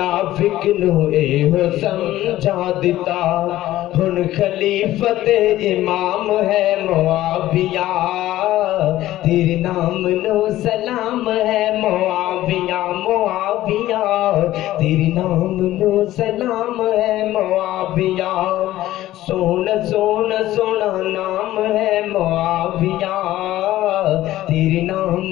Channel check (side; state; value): right; quieter; 14.9 dB